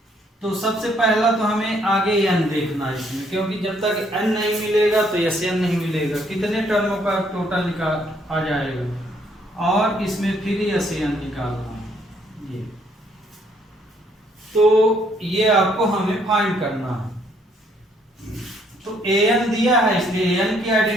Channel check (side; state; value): both; normal; correlation 0.68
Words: तो सबसे पहला तो हमें आगे एन देखना है इसमें, क्योंकि जब तक एन नहीं मिलेगा तो एस एन नहीं मिलेगा, कितने टर्मों का टोटल निकाल आ जाएगा, और इसमें फिर एस एन निकालना है ये, तो ये आपको हमें फाइंड करना है। तो ए एन दिया है इसलिए ए एन की